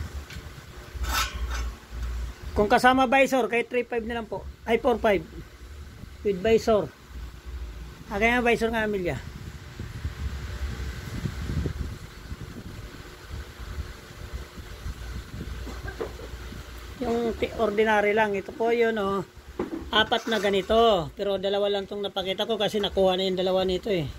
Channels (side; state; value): both; identical; correlation 1.00